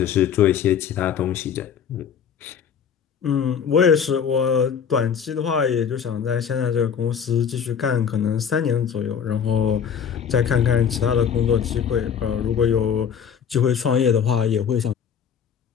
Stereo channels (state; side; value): quieter; right; 7.5 dB